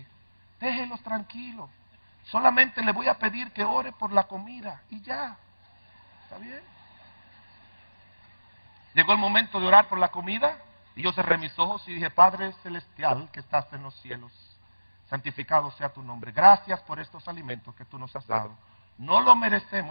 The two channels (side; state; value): both; inverted; correlation -1.00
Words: déjelos tranquilos. Solamente le voy a pedir que ore por la comida y ya. ¿Está bien? Llegó el momento de orar por la comida y yo cerré mis ojos y dije, Padre Celestial que estás en los cielos, santificado sea tu nombre. Gracias por estos alimentos que tú nos has dado. No lo